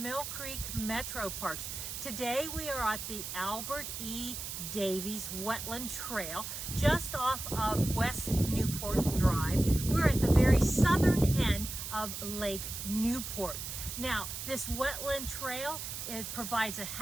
Mill Creek MetroParks. Today we are at the Albert E. Davies Wetland Trail just off of West Newport Drive. We're at the very southern end of Lake Newport. Now, this wetland trail, it provides a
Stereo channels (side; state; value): right; noise; hiss, 7 dB below the sound